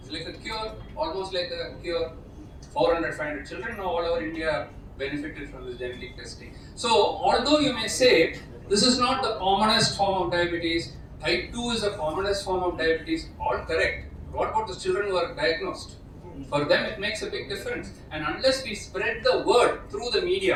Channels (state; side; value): identical; both; correlation 1.00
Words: It's like a cure, almost like a cure. 400, 500 children now all over India benefited from this genetic testing. So, although you may say, this is not the commonest form of diabetes, type 2 is the commonest form of diabetes, all correct. What about the children who are diagnosed? For them it makes a big difference. And unless we spread the word through the